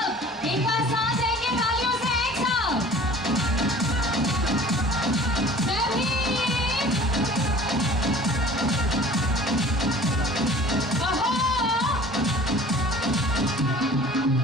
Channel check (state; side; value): normal; both; correlation 0.46